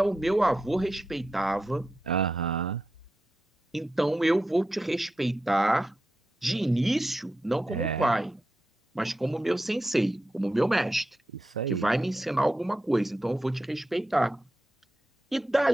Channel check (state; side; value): normal; both; correlation 0.89